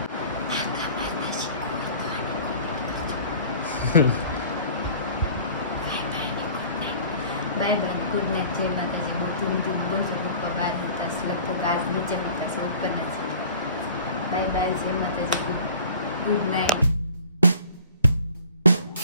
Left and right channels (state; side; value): inverted; both; correlation -0.47